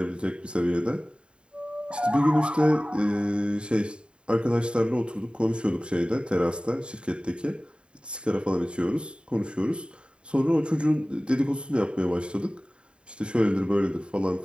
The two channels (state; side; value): late; left; 0.053 ms